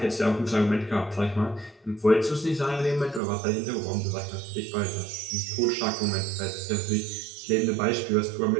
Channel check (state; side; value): drops out; left; at 3.2 s